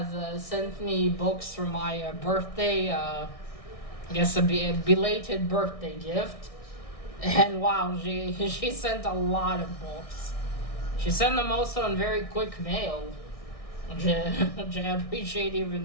sent me books for my birthday, I guess a belated birthday gift. And wow, she sent a lot of books. She sent them also in very quick mail, which I appreciate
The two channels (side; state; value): right; late; 1.6 ms